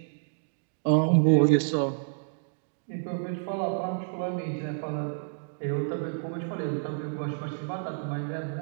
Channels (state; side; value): silent; left; digital silence